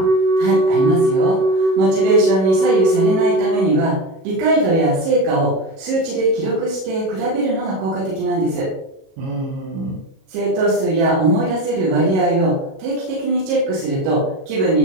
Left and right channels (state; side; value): late; left; 37 ms